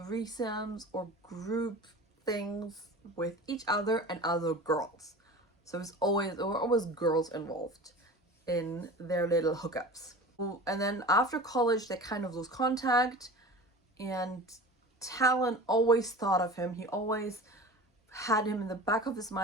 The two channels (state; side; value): normal; both; correlation 0.36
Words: or group things with each other and other girls. So there were always girls involved in their little hookups. And then after college, they kind of lose contact, and Talon always thought of him. He always had him in the back of his